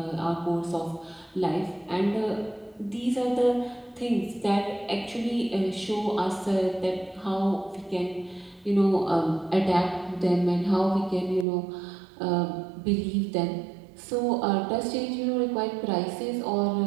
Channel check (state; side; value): drops out; left; at 11.5 s